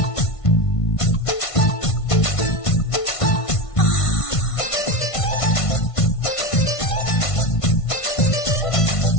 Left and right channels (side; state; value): right; late; 1.5 ms